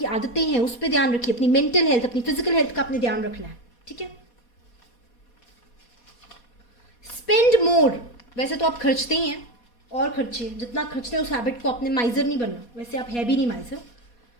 आदतें हैं, उस पर ध्यान रखिए। अपनी मेंटल हेल्थ, अपनी फिजिकल हेल्थ का आपने ध्यान रखना है। ठीक है, स्पेंड मोर। वैसे तो आप खर्चते ही हैं, और खर्चे, जितना खर्चते हैं उस हैबिट को, आपने माइजर नहीं बनना। वैसे आप है भी नहीं माइजर।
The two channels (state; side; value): late; right; 4.2 ms